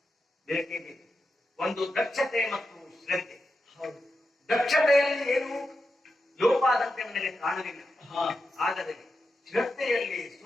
ಬೇಕೇ ಬೇಕು. ಒಂದು ದಕ್ಷತೆ ಮತ್ತು ಶ್ರದ್ಧೆ. ದಕ್ಷತೆಯಲ್ಲಿ ಏನು ಲೋಪ ಆದಂತೆ ನನಗೆ ಕಾಣಲಿಲ್ಲ, ಆದರೆ ಶ್ರದ್ಧೆಯಲ್ಲಿ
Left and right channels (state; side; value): normal; both; correlation 0.88